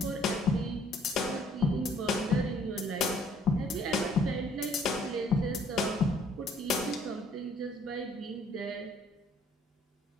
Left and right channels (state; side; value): normal; both; correlation 0.61